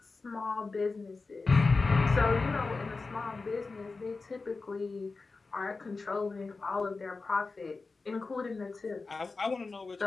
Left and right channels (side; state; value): right; quieter; 4.0 dB